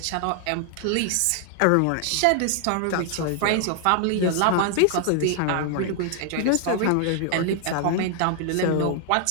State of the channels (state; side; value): different; both; correlation 0.00